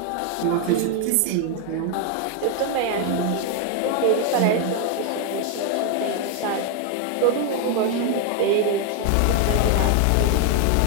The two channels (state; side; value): different; both; correlation 0.01